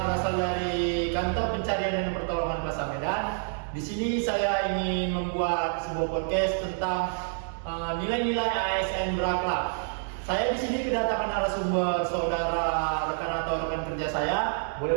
berasal dari Kantor Pencarian dan Pertolongan Plaza Medan. Di sini saya ingin membuat sebuah podcast tentang nilai-nilai ASN berakhlak. Saya di sini kedatangan narasumber saudara, rekan atau rekan kerja saya.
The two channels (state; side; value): silent; left; digital silence